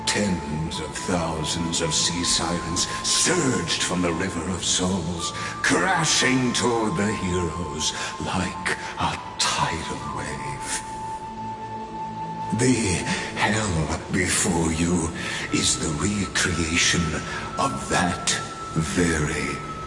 Tens of thousands of sea sirens surged from the River of Souls, crashing toward the heroes like a tidal wave. The hell before you is the recreation of that very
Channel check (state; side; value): identical; both; correlation 1.00